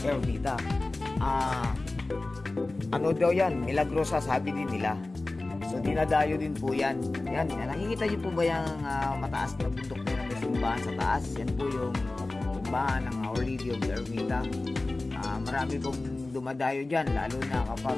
Ermita. Ano daw yan? Milagrosa, sabi din nila. So dinadayo din po yan. Yan, nakikita niyo po ba yung mataas na bundok na may simbahan sa taas? Yan po yung simbahan ng Our Lady of Ermita. Marami pong dumadayo dyan, lalo na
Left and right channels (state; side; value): quieter; right; 3.1 dB